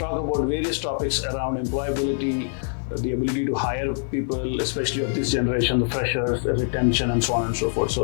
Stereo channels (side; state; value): right; silent; digital silence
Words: about various topics around employability, the ability to hire people, especially of this generation, the freshers, retention, and so on and so forth. So